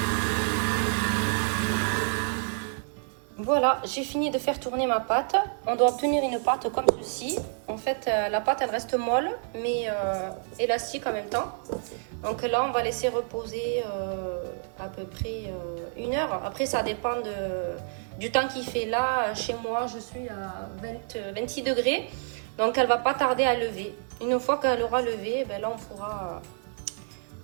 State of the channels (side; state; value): left; silent; 59 dB below the other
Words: Voilà, j'ai fini de faire tourner ma pâte. On doit obtenir une pâte comme ceci. En fait, la pâte, elle reste molle, mais élastique en même temps. Donc là, on va laisser reposer à peu près 1 heure. Après, ça dépend du temps qu'il fait. Là, chez moi, je suis à 26 degrés. Donc, elle va pas tarder à lever. Une fois qu'elle aura levé, ben là, on